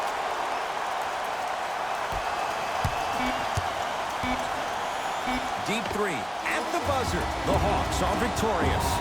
Deep three at the buzzer. The Hawks are victorious.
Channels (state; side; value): identical; both; correlation 1.00